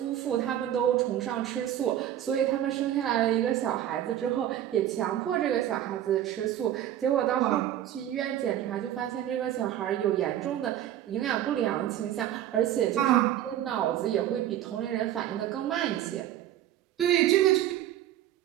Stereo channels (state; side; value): quieter; left; 11.8 dB